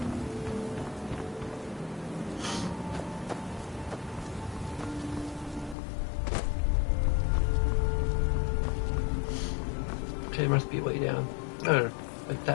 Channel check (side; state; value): right; drops out; at 5.8 s